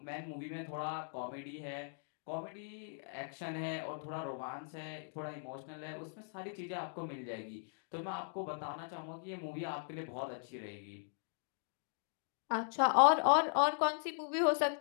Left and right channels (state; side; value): silent; right; digital silence